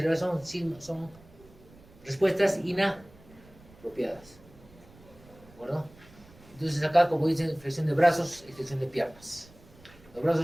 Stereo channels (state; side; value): noise; right; rumble, 24 dB below the sound